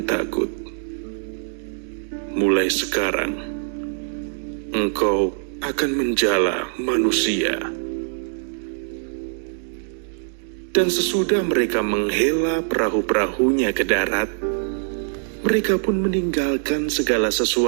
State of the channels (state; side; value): silent; left; 63 dB below the other